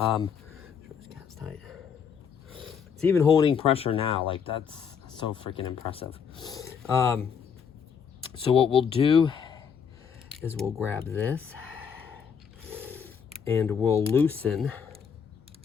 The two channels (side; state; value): right; quieter; 6.9 dB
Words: tight. It's even holding pressure now. Like, that's so freaking impressive. So what we'll do is we'll grab this and we'll loosen